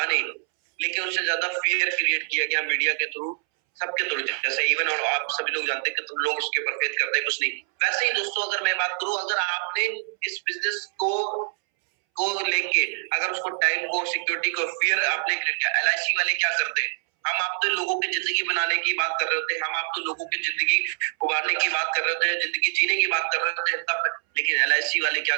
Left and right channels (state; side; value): silent; left; 62 dB below the other